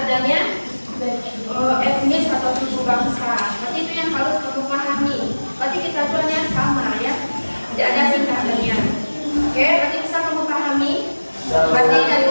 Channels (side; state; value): both; inverted; correlation -1.00